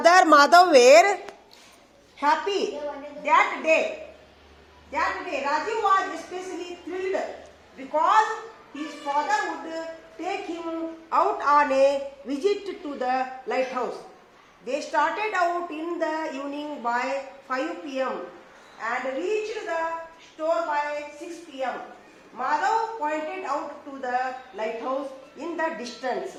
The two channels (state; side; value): identical; both; correlation 1.00